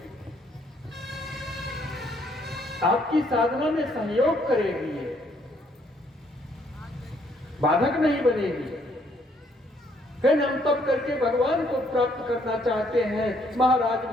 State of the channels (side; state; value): both; normal; correlation 0.68